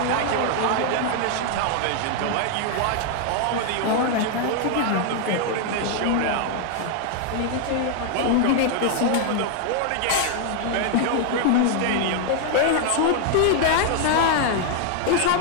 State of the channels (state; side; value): different; both; correlation 0.00